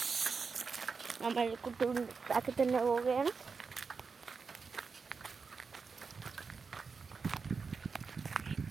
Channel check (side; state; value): left; quieter; 5.1 dB